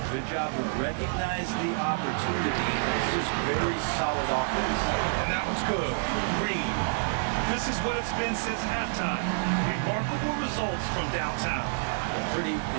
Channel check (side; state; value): left; silent; digital silence